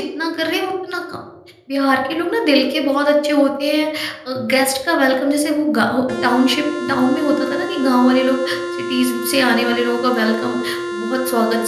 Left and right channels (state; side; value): identical; both; correlation 1.00